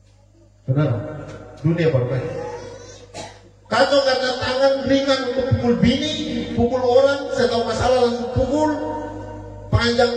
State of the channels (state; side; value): identical; both; correlation 1.00